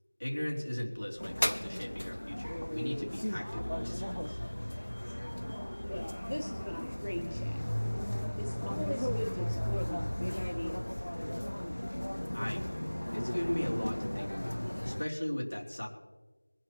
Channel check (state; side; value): inverted; both; correlation -1.00